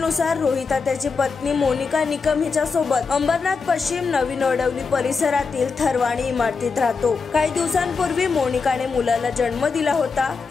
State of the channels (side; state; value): right; quieter; 4.9 dB